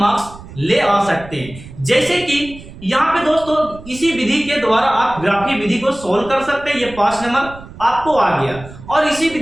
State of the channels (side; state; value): right; noise; rumble, 17 dB below the sound